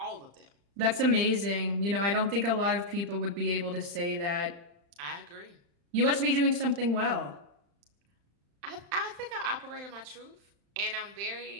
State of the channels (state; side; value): late; left; 35 ms